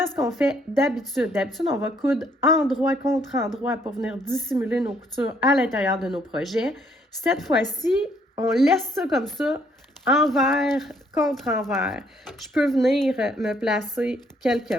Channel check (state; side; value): normal; both; correlation 0.67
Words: à ce qu'on fait d'habitude, on va coudre endroit contre endroit pour venir dissimuler nos coutures à l'intérieur de nos projets. Cette fois-ci, on laisse ça comme ça, envers contre envers. Je peux venir me placer quelques